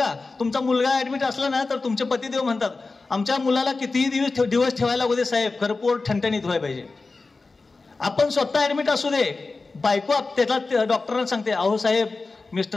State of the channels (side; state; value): right; quieter; 3.8 dB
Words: तुमचा मुलगा ऍडमिट असला ना तर तुमचे पतिदेव म्हणतात, आमच्या मुलाला कितीही दिवस ठेवायला लागू दे साहेब, खरं पोट ठणठणीत व्हायला पाहिजे. आपण स्वतः ऍडमिट असू दे, बायको त्याला डॉक्टरांना सांगते, अहो साहेब